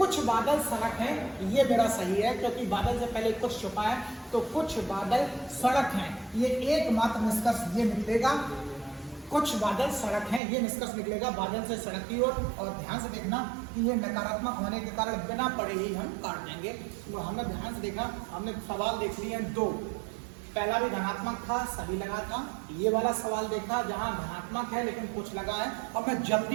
बादल सड़क है, ये मेरा सही है क्योंकि बादल से पहले कुछ छुपा है, तो कुछ बादल सड़क हैं, ये एकमात्र निष्कर्ष ये निकलेगा, कुछ बादल सड़क हैं, ये निष्कर्ष निकलेगा बादल से सड़क की ओर। और ध्यान से देखना कि ये नकारात्मक होने के कारण बिना पढ़े ही हम काट देंगे। तो हमने ध्यान से देखा, हमने सवाल देख लिए हैं 2, पहला भी धनात्मक था, सभी लगा था, ये वाला सवाल देखा जहां धनात्मक है लेकिन कुछ लगा है। अब मैं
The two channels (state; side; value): drops out; left; at 10.4 s